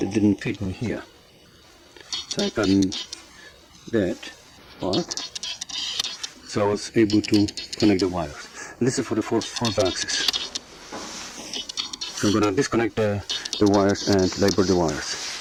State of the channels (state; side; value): identical; both; correlation 1.00